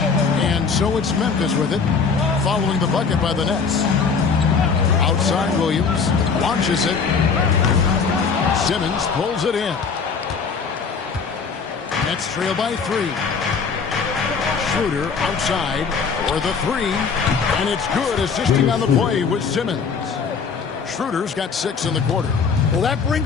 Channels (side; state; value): right; quieter; 5.5 dB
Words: And so it's Memphis with it, following the bucket by the Nets. Outside Williams, launches it. Simmons pulls it in. Nets trail by 3. Schroeder outside for the 3. And it's good, assisting on the play with Simmons. Schroeder's got 6 in the quarter. Well, that